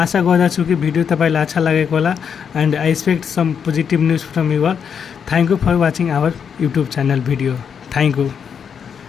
गर्दछु कि भिडियो तपाईँलाई अच्छा लागेको होला and I expect some positive news from you all. Thank you for watching our YouTube channel video. Thank you.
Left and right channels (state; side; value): quieter; right; 7.2 dB